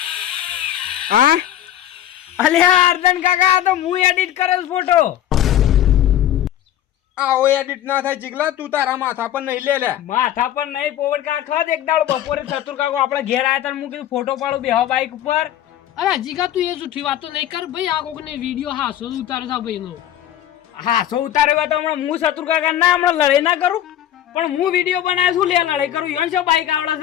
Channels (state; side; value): quieter; right; 11.7 dB